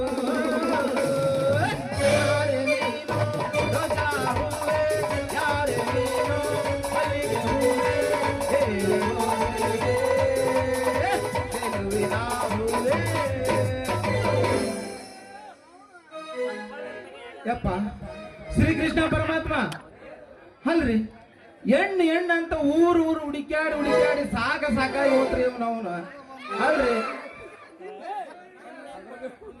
ಯಪ್ಪ ಶ್ರೀಕೃಷ್ಣ ಪರಮಾತ್ಮ ಅಲ್ರಿ, ಹೆಣ್ಣು ಅಂತ ಊರು ಹುಡುಕ್ಯಾಡಿ ಸಾಕಾಗಿ ಹೋತ್ರಿ ಅವನು. ಅಲ್ರಿ,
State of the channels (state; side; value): identical; both; correlation 1.00